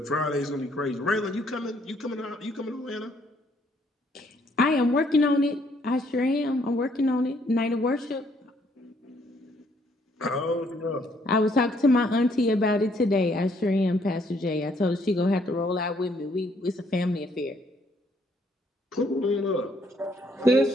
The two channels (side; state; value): both; normal; correlation 0.68